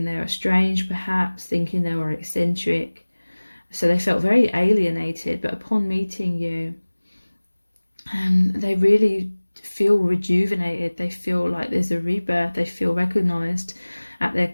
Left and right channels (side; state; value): both; inverted; correlation -1.00